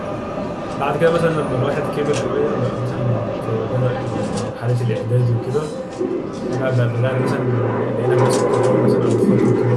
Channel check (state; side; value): identical; both; correlation 1.00